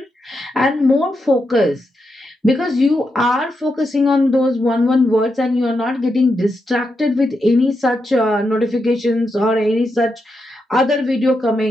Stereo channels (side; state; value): both; normal; correlation 0.85